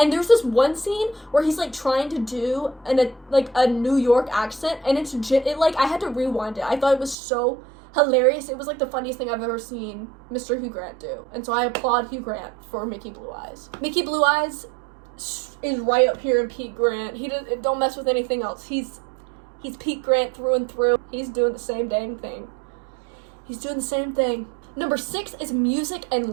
there's this one scene where he's like trying to do a New York accent, and it like I had to rewind it. I thought it was so hilarious. It was like the funniest thing I've ever seen Mr. Hugh Grant do. And so I applaud Hugh Grant for Mickey Blue Eyes. Mickey Blue Eyes is right up here in Pete Grant. Don't mess with anything else. He's Pete Grant through and through. He's doing the same dang thing. He's doing the same thing. Number 6 is Music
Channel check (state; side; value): drops out; left; at 7.2 s